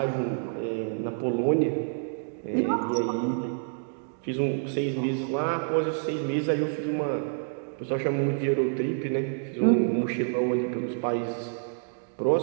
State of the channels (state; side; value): silent; left; digital silence